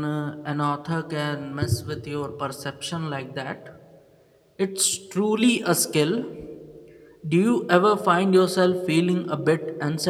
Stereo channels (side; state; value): both; identical; correlation 1.00